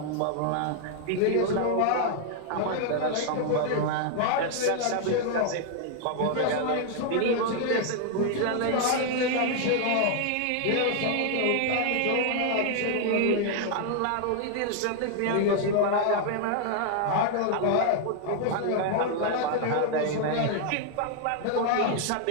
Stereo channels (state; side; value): different; both; correlation 0.00